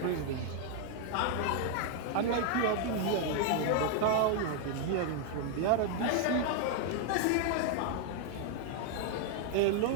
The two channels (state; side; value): different; both; correlation 0.00